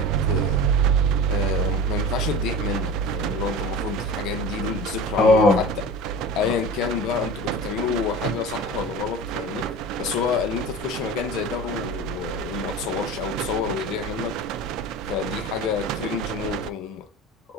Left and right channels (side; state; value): both; normal; correlation 0.34